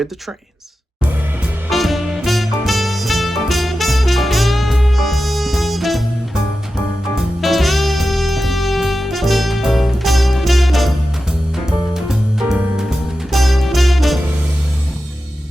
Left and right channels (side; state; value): both; normal; correlation 0.92